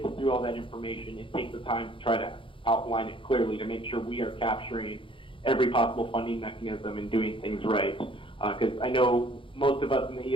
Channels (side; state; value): right; late; 0.25 ms